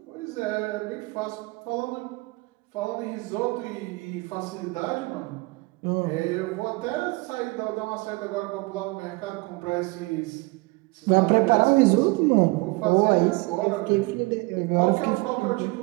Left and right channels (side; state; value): left; quieter; 24.9 dB